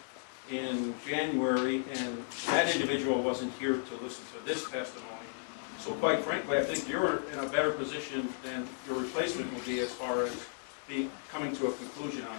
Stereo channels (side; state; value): right; silent; digital silence